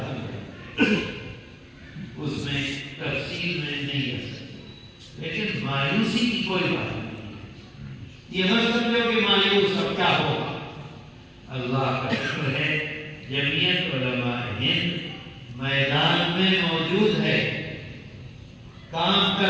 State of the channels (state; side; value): identical; both; correlation 1.00